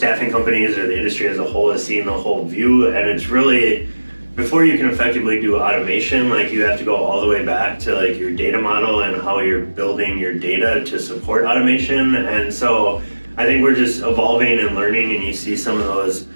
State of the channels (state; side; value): inverted; both; correlation -1.00